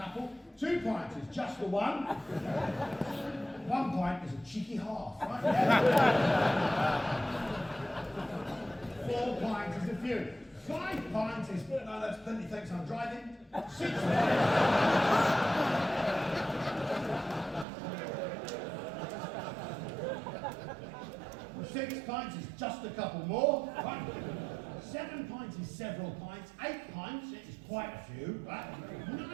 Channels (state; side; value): drops out; left; at 17.7 s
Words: 2 pints is just the one. 1 pint is a cheeky half, right? Yeah. 4 pints is a few. 5 pints is, no, that's plenty, thanks, I'm driving. 6 pints is just a couple more, right? 7 pints is several pints. 8 pints is quite a few, right?